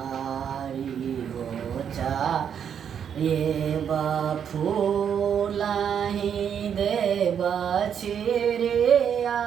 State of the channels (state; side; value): quieter; left; 8.2 dB